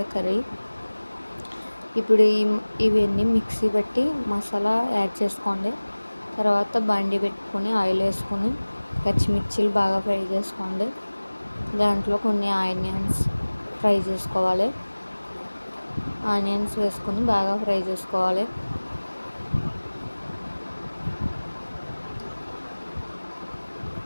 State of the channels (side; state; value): both; inverted; correlation -1.00